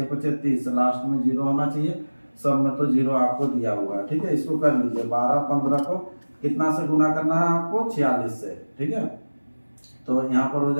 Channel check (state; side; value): inverted; both; correlation -1.00